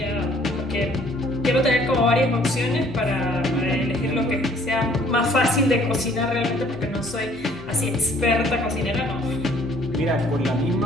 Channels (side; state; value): right; noise; hum, 19 dB below the sound